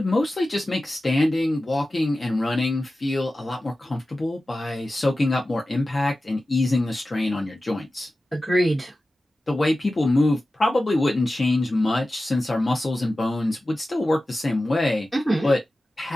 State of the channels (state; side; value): normal; both; correlation 0.95